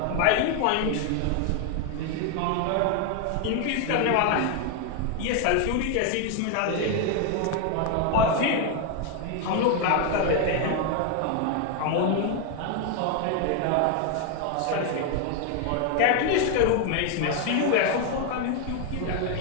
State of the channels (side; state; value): both; different; correlation 0.01